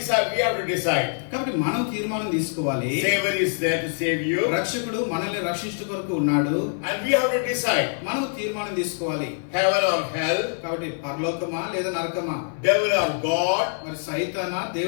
We have to decide. కాబట్టి మనం తీర్మానం తీసుకోవాలి. Savior is there to save you. రక్షకుడు మనల్ని రక్షించు కొరకు ఉన్నాడు. And we have to decide. మనం తీర్మానం తీసుకోవాలి. Heaven or hell. కాబట్టి పరలోకమా లేదా నరకమా, Devil or God. మరి సైతానా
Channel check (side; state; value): right; silent; digital silence